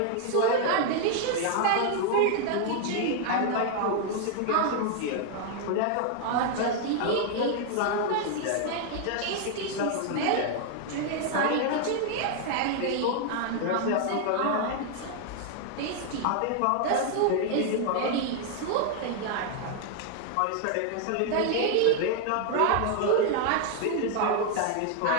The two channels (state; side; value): different; both; correlation 0.00